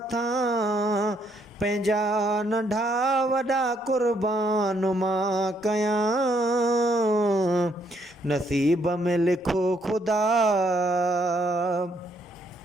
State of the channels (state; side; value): normal; both; correlation 0.71